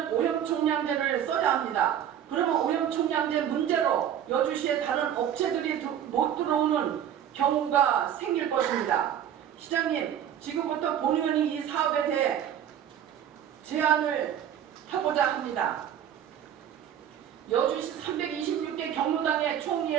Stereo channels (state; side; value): quieter; left; 9.9 dB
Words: 오염총량제를 써야 합니다. 그러면 오염총량제 문제로 여주시에 다른 업체들이 못 들어오는 경우가 생길 것입니다. 시장님, 지금부터 본의원이 이 사업에 대해 제안을 하고자 합니다. 여주시 326개 경로당의 총